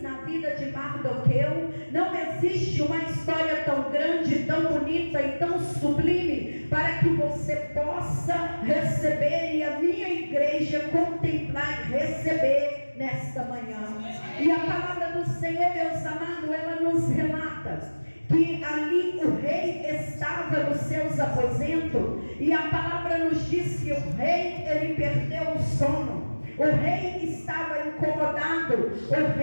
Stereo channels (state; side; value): inverted; both; correlation -1.00